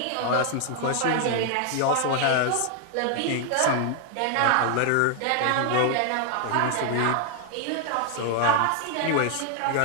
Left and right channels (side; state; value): both; different; correlation 0.00